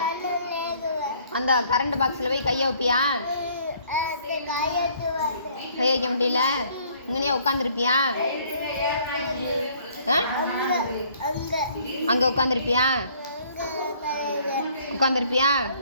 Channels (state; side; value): inverted; both; correlation -0.60